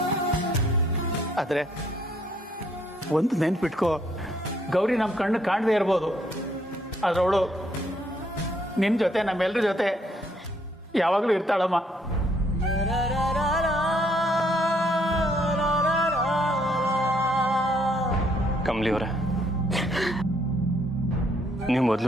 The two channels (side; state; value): both; normal; correlation 0.68